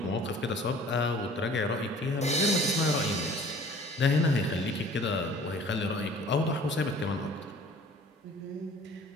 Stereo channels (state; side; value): normal; both; correlation 0.49